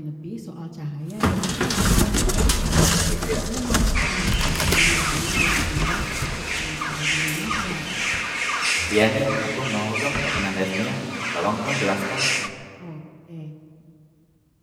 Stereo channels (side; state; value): both; identical; correlation 1.00